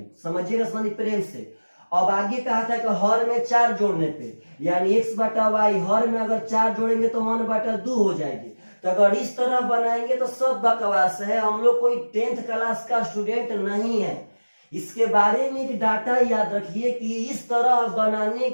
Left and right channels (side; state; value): both; inverted; correlation -1.00